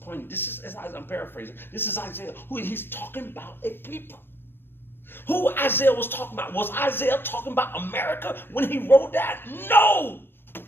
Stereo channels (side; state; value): right; late; 0.10 ms